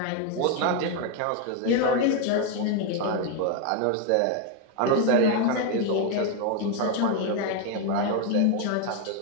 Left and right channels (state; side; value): different; both; correlation 0.01